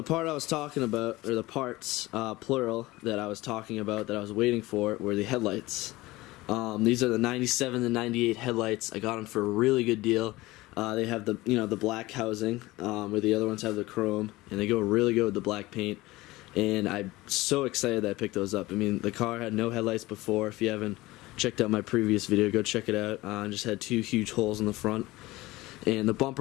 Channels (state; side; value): quieter; right; 19.5 dB